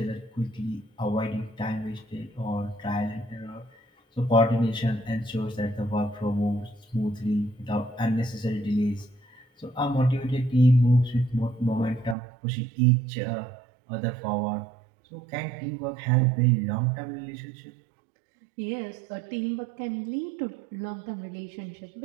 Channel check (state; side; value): drops out; left; at 12.2 s